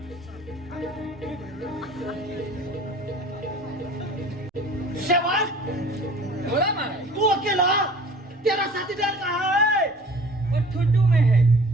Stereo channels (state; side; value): normal; both; correlation 0.47